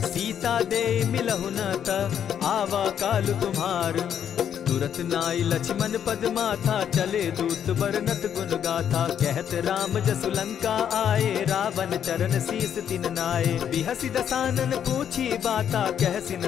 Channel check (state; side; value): quieter; right; 9.0 dB